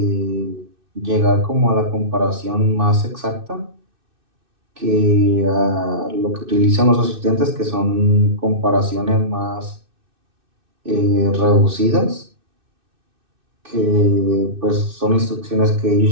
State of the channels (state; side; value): late; left; 2.6 ms